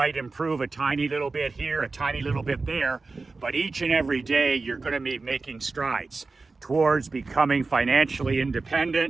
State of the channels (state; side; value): quieter; left; 3.8 dB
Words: improve a tiny little bit here, a tiny little bit there, but each and every day you're going to be making strides towards becoming financially